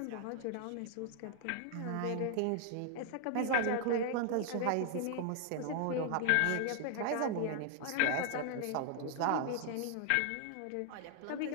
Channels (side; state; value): both; different; correlation 0.00